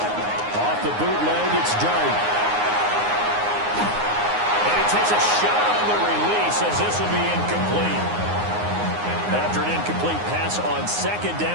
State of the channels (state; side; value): late; left; 9.6 ms